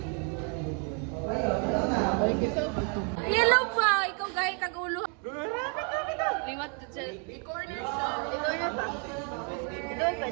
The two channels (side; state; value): left; quieter; 38.7 dB